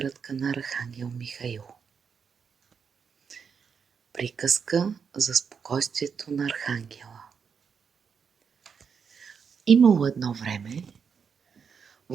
на Архангел Михаил. Приказка за спокойствието на Архангела. Имало едно време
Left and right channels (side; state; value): left; quieter; 6.3 dB